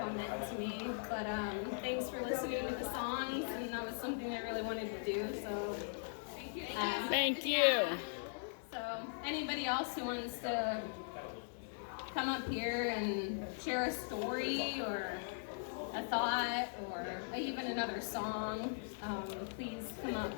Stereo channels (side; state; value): right; silent; digital silence